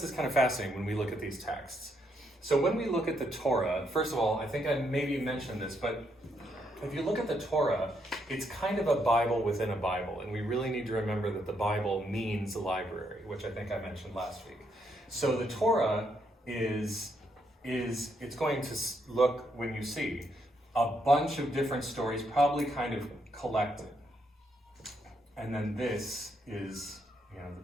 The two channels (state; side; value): normal; both; correlation 0.76